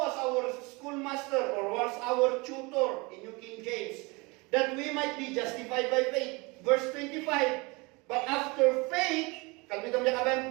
was our schoolmaster or was our tutor in New King James, that we might be justified by faith. Verse 25, but after faith, kalbitam niya kabay,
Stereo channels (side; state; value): left; quieter; 26.5 dB